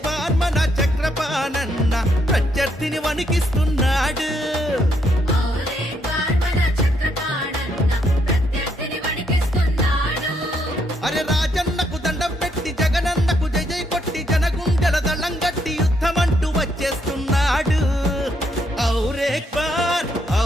బార్ మన చక్రపాణన్న ప్రత్యర్థిని వణికిస్తున్నాడు. అరే రాజన్నకు దండం పెట్టి జగనన్నకు జై జై కొట్టి జనగుండెల దళం గట్టి యుద్ధమంటూ వచ్చేస్తున్నాడు. ఔర్ ఏక్ బార్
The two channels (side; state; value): both; normal; correlation 0.74